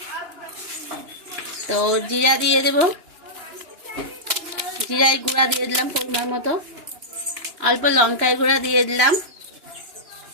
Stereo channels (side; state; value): left; late; 2.9 ms